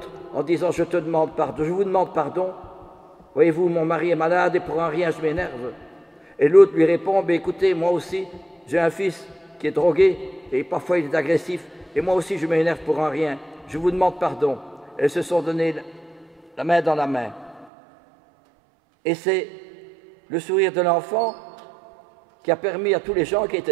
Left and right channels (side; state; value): left; drops out; at 17.7 s